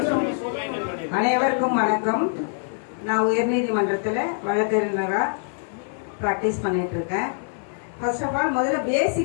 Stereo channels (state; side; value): silent; right; 62 dB below the other